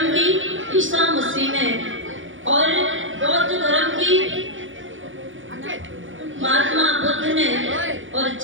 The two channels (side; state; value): left; late; 0.57 ms